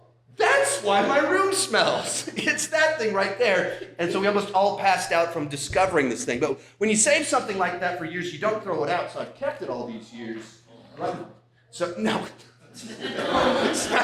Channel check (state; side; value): identical; both; correlation 1.00